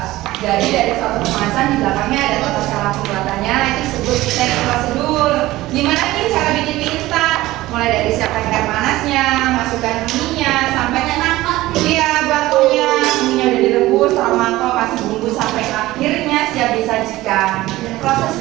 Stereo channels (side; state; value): left; quieter; 17.3 dB